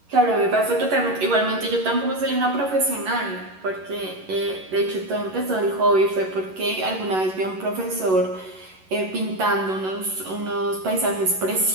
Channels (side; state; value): left; late; 11 ms